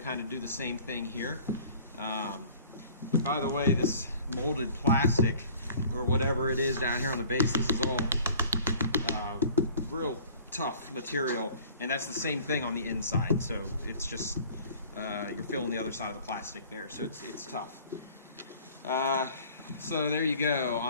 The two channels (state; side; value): inverted; both; correlation -0.49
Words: of do the same thing here. By the way, this molded plastic or whatever it is down here on the base, this is all real tough material, and that's the same thing on the inside. So it's just you're feeling the other side of the plastic there, so it's tough. So there you go.